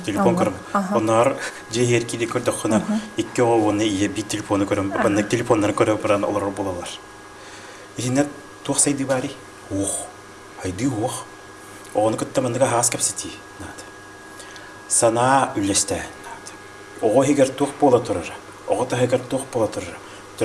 Телефон көрөм. Онар жеер киде көрдөккөнө икки оны ие би телефону көрөм. Баннык телефоннарын көрөп баран олор болалар. Инет туаксайды бари. Ох. Айди ох. Оны кытта мандыга хас кепсети. Нат. Сана үлесте. Нат. Ого хигер тук бола турар. Ого та хигер тук бола турар.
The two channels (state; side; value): identical; both; correlation 1.00